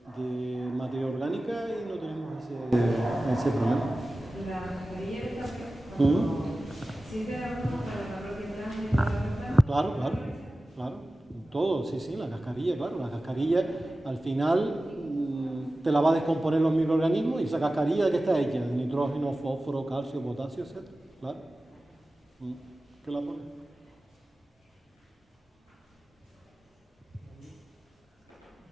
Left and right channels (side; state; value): both; normal; correlation 0.96